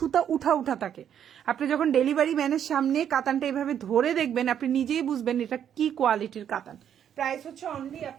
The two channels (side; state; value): left; quieter; 9.2 dB